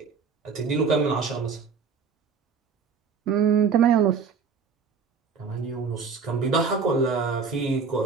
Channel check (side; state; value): left; quieter; 5.6 dB